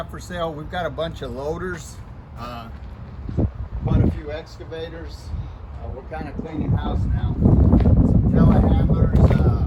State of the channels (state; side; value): identical; both; correlation 1.00